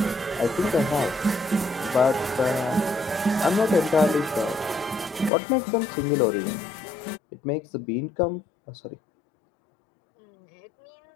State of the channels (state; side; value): drops out; right; at 5.3 s